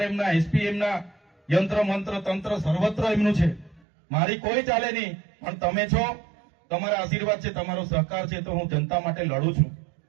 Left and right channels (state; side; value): drops out; left; at 3.8 s